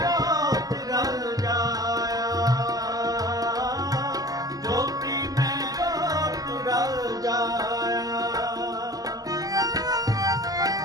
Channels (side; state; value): left; late; 0.18 ms